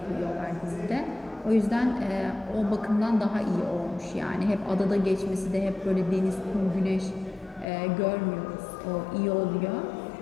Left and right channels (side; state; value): right; drops out; at 7.7 s